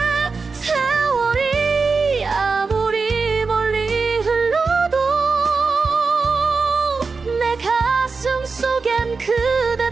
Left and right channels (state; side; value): quieter; left; 4.5 dB